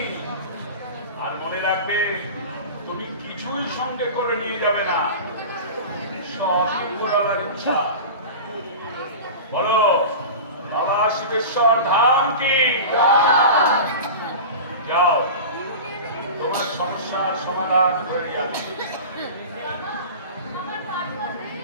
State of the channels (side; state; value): both; inverted; correlation -0.31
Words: আর মনে রাখবে, তুমি কিছুই সঙ্গে করে নিয়ে যাবে না, সব উপরওয়ালার ইচ্ছা। বলো, বাবা শিবেশ্বর ধাম কি? যাও, তোমার সমস্যার সমাধান করে আমি।